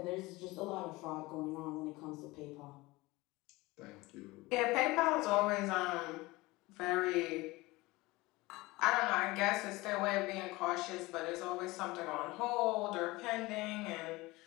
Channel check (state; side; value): quieter; right; 21.2 dB